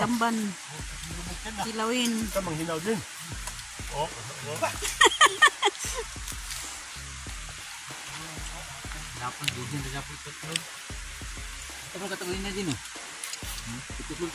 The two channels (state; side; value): identical; both; correlation 1.00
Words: Kilawin. Ito manghinaw din. Oh. Dapat din sa dapat tutlog. Ito mo katawin na din, oh. Tutlog